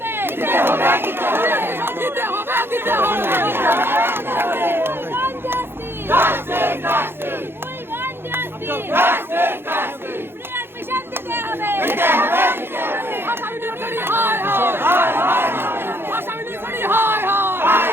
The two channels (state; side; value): late; left; 0.11 ms